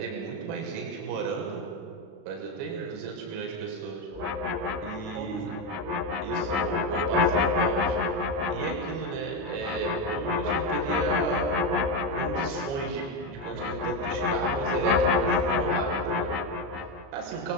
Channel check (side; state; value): left; late; 37 ms